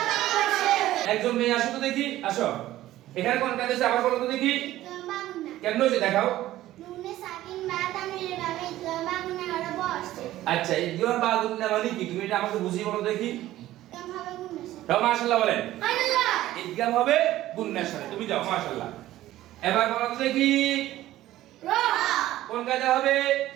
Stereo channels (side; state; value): left; quieter; 14.8 dB